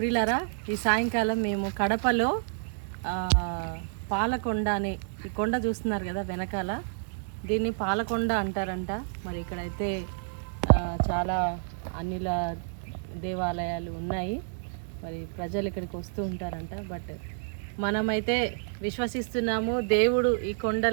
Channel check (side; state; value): left; silent; digital silence